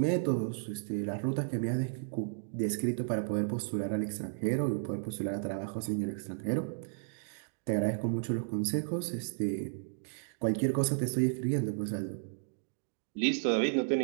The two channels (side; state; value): left; silent; digital silence